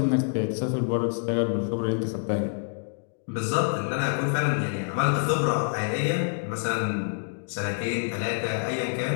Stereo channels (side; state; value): right; silent; digital silence